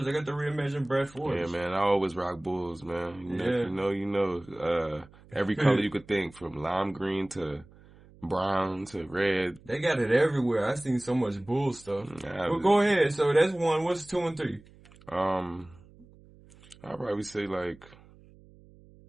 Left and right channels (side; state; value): right; noise; hum, 24 dB below the sound